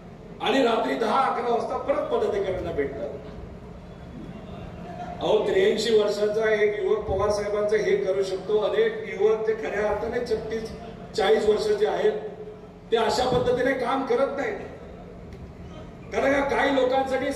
आणि रात्री 10-11 वाजता परत पदाधिकाऱ्यांना भेटतात. अहो 83 वर्षाचा एक युवक पवार साहेबांचं हे करू शकतो. अनेक युवक ते खऱ्या अर्थाने 36-40 वर्षाचे आहेत, ते अशा पद्धतीने काम करत नाहीत. कारण काही लोकांसाठी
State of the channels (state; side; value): identical; both; correlation 1.00